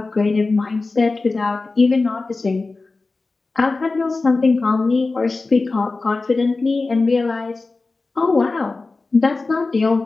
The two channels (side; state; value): right; quieter; 3.6 dB